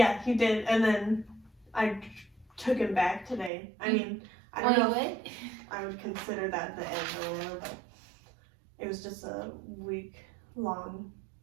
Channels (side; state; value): left; drops out; at 3.5 s